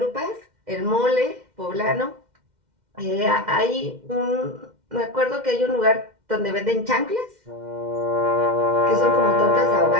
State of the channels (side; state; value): left; late; 2.1 ms